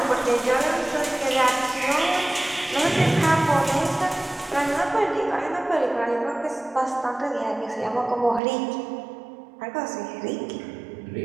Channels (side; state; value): left; drops out; at 8.4 s